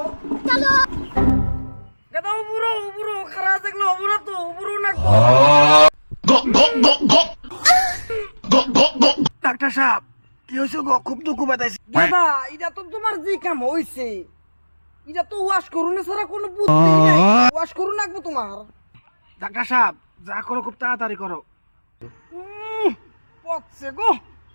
গাদা উপরো খারাপ দেখলে উপরো তো উপরো লাগবো। ডাক্তার সাহেব কি হয়েছে গো? খুব দুঃখ পাইছি। গাদা এটা তো তোমার যে কাম হইছে, এটা তো ওয়াশ করুন ছাড়া কোনো বুদ্ধি নাই। ওয়াশ করুন লাগবো তোমার। ডাক্তার সাহেব যা করো খুব তাড়াতাড়ি করো। পচছে গো,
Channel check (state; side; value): inverted; both; correlation -1.00